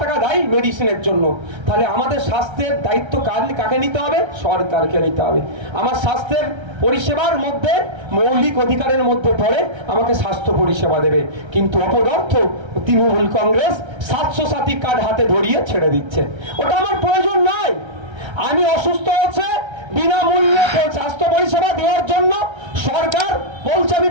টাকা দেয় মেডিসিনের জন্য। তাহলে আমাদের স্বাস্থ্যের দায়িত্ব কাকে নিতে হবে? সরকারকে নিতে হবে। আমার স্বাস্থ্যের পরিষেবার মধ্যে মৌলিক অধিকারের মধ্যে পড়ে আমাকে স্বাস্থ্য পরিষেবা দেবে, কিন্তু অপদার্থ তৃণমূল কংগ্রেস 700 সাথী কার্ড হাতে ধরিয়ে ছেড়ে দিচ্ছে। ওটা আমার প্রয়োজন নয়। আমি অসুস্থ হচ্ছে, বিনামূল্যে স্বাস্থ্য পরিষেবা দেওয়ার জন্য সরকার বলছে আমি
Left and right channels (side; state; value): left; late; 1.3 ms